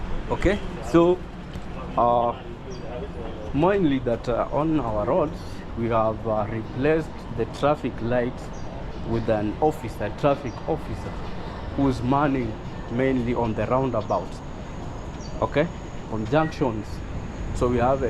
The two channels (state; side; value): identical; both; correlation 1.00